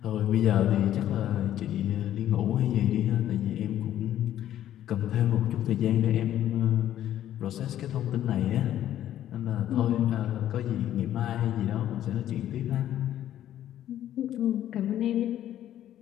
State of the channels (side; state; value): right; quieter; 11.9 dB